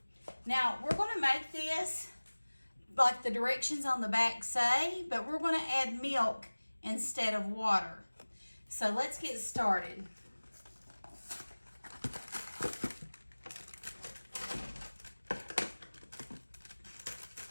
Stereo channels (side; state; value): both; inverted; correlation -1.00